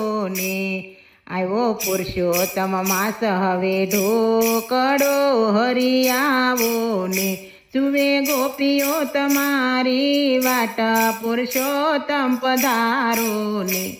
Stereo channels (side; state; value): both; identical; correlation 1.00